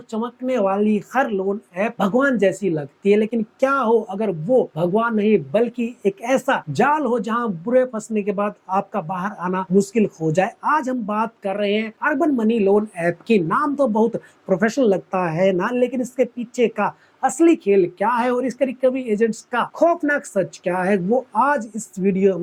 चमकने वाली हर लोन ऐप भगवान जैसी लगती है। लेकिन क्या हो अगर वो भगवान नहीं बल्कि एक ऐसा जाल हो जहां बुरे फंसने के बाद आपका बाहर आना मुश्किल हो जाए। आज हम बात कर रहे हैं अर्बन मनी लोन ऐप की। नाम तो बहुत प्रोफेशनल लगता है ना, लेकिन इसके पीछे का असली खेल क्या है और इसके रिकवरी एजेंट्स का खौफनाक सच क्या है, वो आज इस वीडियो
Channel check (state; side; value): identical; both; correlation 1.00